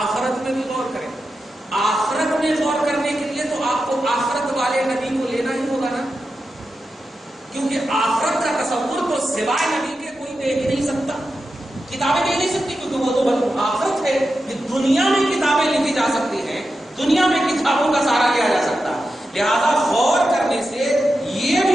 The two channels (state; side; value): normal; both; correlation 0.90